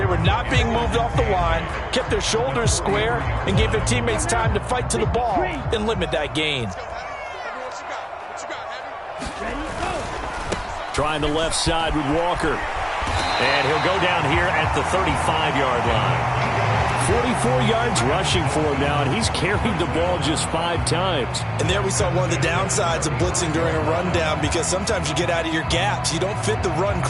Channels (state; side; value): identical; both; correlation 1.00